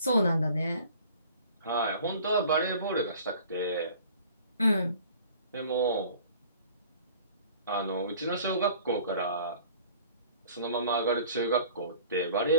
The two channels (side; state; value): both; inverted; correlation -0.49